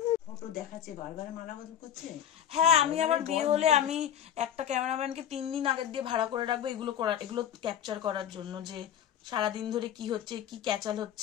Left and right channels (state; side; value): quieter; right; 9.9 dB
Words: ফটো দেখাচ্ছে, বারবার মালা বদল করছে। হ্যাঁ আমি আবার বিয়ে হলে আমি একটা ক্যামেরাম্যানকে 3 দিন আগের দিয়ে ভাড়া করে রাখবো এগুলো ক্যাপচার করার জন্য, যে সারাদিন ধরে কি হচ্ছে, কি ক্যাচাল